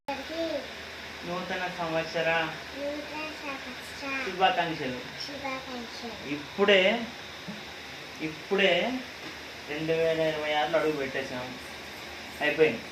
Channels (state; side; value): identical; both; correlation 1.00